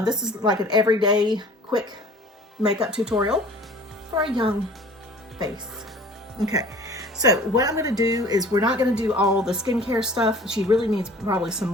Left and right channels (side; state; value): both; normal; correlation 0.48